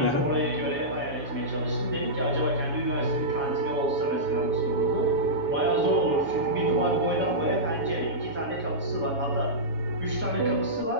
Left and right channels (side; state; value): left; late; 7.1 ms